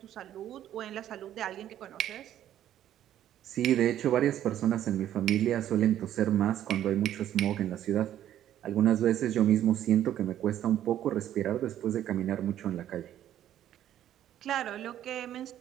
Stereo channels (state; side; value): quieter; left; 11.5 dB